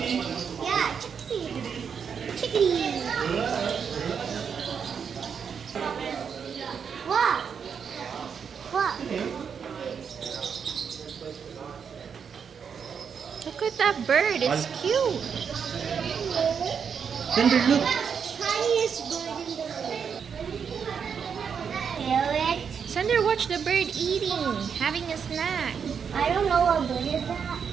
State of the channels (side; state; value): left; quieter; 6.8 dB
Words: Yeah, chickadee. What? Look at that bird. It's cute. Sander, look. Tiniest bird in the world. Parrot. Sander, watch the bird eating, having a snack. I don't know what bird is that.